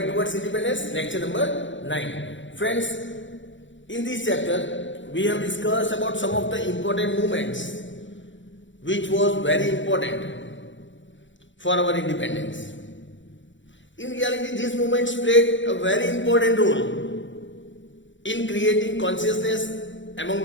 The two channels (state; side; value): late; right; 0.55 ms